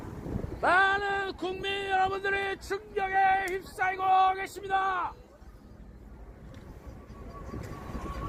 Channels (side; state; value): both; identical; correlation 1.00